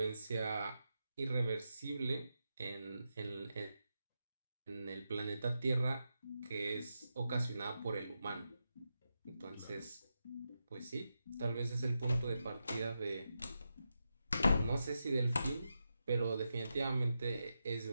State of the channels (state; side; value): inverted; both; correlation -0.88